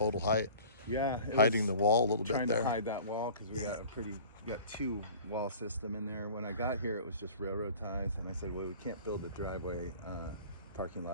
height. Yeah, Hiding the wall a little bit trying there. to hide that wall because we got two wall system in there. When I got here, it was just railroad ties, and I said, well, we can't build a driveway parking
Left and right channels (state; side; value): inverted; both; correlation -0.44